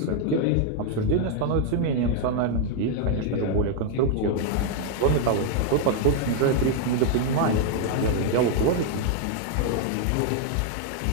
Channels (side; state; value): both; different; correlation 0.00